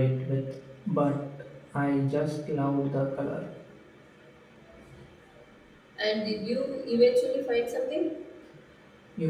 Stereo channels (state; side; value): identical; both; correlation 1.00